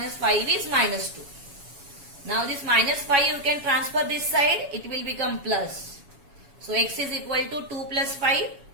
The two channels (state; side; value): late; left; 7.2 ms